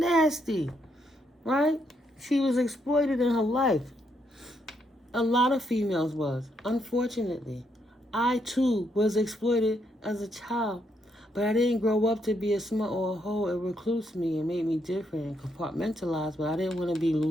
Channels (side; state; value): both; normal; correlation 0.76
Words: Right? She was exploited in her life. A lot of females was. Unfortunately, I too was exploited as a child. But I didn't grow up to be a smut or a hoe. It reclused me and made me different and compartmentalized. But I didn't want to be